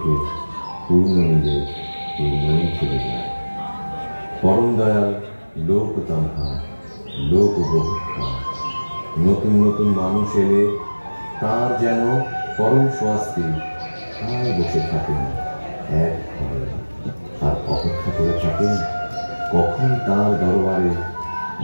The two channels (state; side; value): inverted; both; correlation -1.00